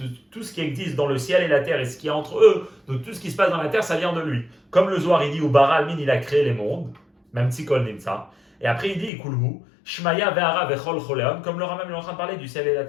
tout ce qui existe dans le ciel et la terre et ce qui est entre eux, donc tout ce qui se passe dans la terre, ça vient de lui. Comme le Zohar il dit, Ubara almin il a créé les mondes, mamtsi kol nimtza. Et après il dit Ikulhu shmaya ve'ara vechol choleon, comme le Rambam est en train de parler du ciel et la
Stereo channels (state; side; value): drops out; right; at 9.1 s